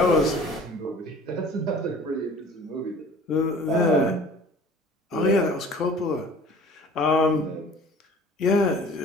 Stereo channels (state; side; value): normal; both; correlation 0.47